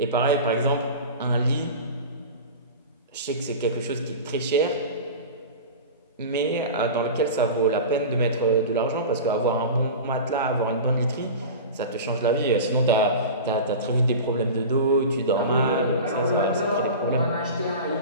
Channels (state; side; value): inverted; both; correlation -0.31